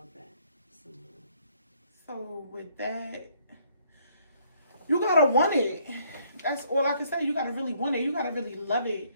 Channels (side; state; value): both; inverted; correlation -0.66